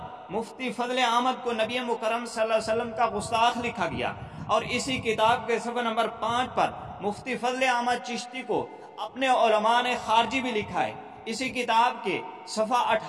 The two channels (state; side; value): identical; both; correlation 1.00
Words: مفتی فضل احمد کو نبی مکرم صلی اللہ علیہ وسلم کا گستاخ لکھا گیا۔ اور اسی کتاب کے صفحہ نمبر 5 پر مفتی فضل احمد چشتی کو اپنے علماء نے خارجی بھی لکھا ہے۔ اسی کتاب کے صفحہ